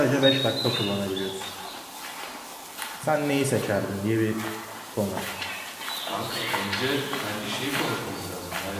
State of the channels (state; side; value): identical; both; correlation 1.00